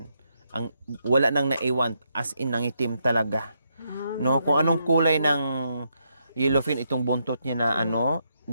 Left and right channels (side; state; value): both; inverted; correlation -0.79